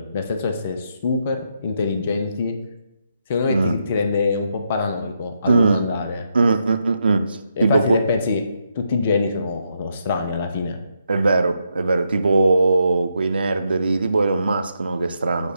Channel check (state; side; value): inverted; both; correlation -0.80